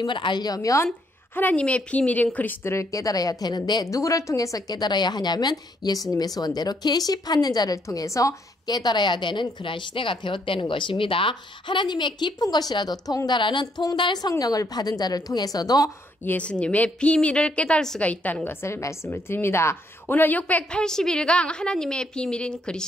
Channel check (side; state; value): both; normal; correlation 0.72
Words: 알려면 하나님의 비밀인 그리스도를 깨달아야 되는데 누구를 통해서 깨달아야 하냐면 예수님의 소원대로 계시 받는 자를 통해서 깨달아야 되는 그러한 시대가 되었다는 것입니다. 하나님의 깊은 것이라도 통달하는 통달 성령을 받은 자를 통해서도 예수님의 비밀을 깨달을 수가 있다는 것을 말씀을 드립니다. 오늘 681강 하나님의 비밀인